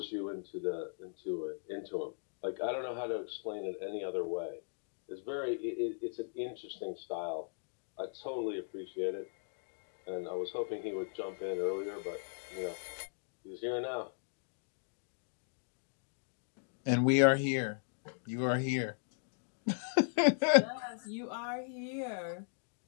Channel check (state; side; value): silent; right; digital silence